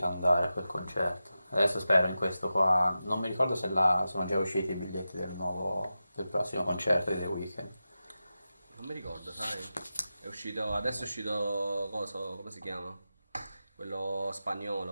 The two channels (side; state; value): both; inverted; correlation -0.92